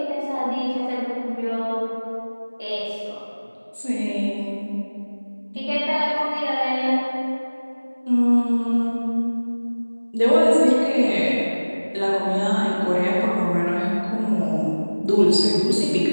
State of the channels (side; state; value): both; inverted; correlation -1.00